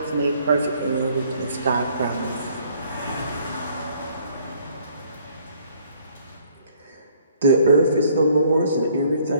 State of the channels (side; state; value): both; inverted; correlation -0.62